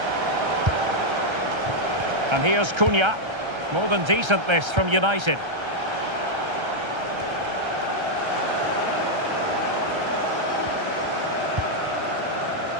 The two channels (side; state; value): left; late; 1.3 ms